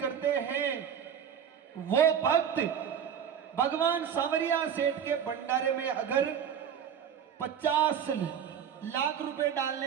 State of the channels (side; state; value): left; quieter; 8.3 dB